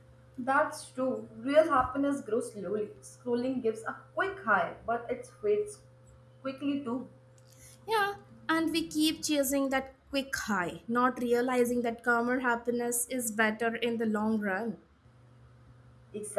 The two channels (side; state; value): both; identical; correlation 1.00